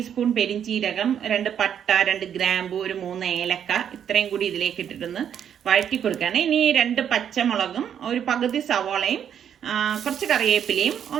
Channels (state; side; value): quieter; left; 8.9 dB